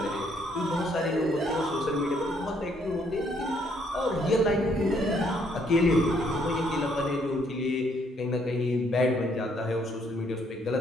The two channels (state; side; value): normal; both; correlation 0.69